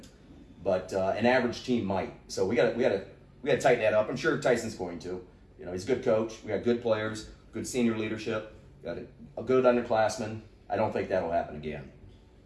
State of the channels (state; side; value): identical; both; correlation 1.00